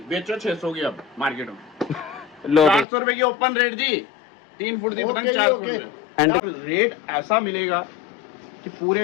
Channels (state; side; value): drops out; right; at 2.9 s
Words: बेचो, 600 की अब मार्केट में। लो 400 रुपए की ओपन रेट जी। 3 फुट की पतंग 400 रुपए। रेट ऐसा मिलेगा कि